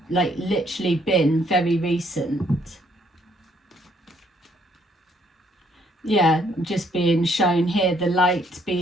like literally been very recent. Yeah, just being shown here, the light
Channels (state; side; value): normal; both; correlation 0.68